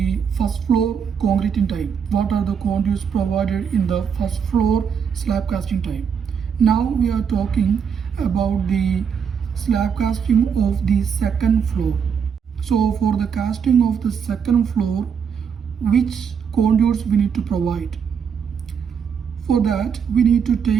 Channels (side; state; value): left; quieter; 7.0 dB